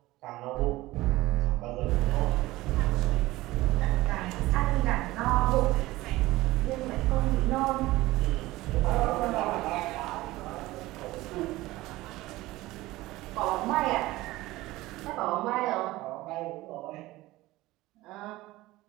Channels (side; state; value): left; quieter; 18.4 dB